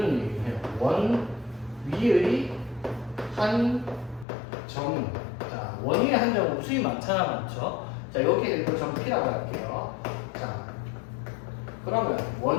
얘기를 해요. 원 위의 한 점. 자, 원 위의 한 점은 수이 많잖아, 많죠? 자, 여기에 이거 점 P라고 할게요. 자, 그러면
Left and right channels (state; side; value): drops out; right; at 4.2 s